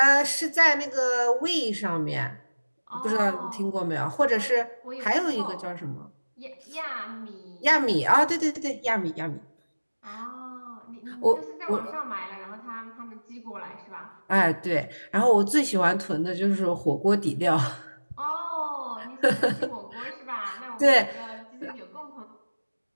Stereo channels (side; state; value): both; inverted; correlation -1.00